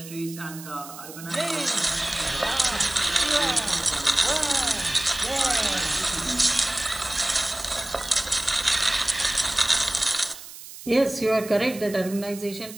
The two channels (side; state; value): right; noise; hiss, 15 dB below the sound